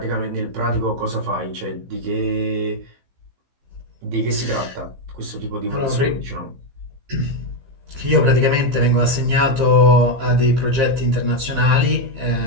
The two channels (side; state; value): left; late; 15 ms